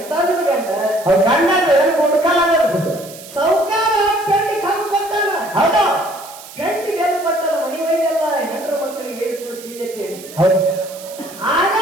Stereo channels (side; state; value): right; noise; hiss, 17 dB below the sound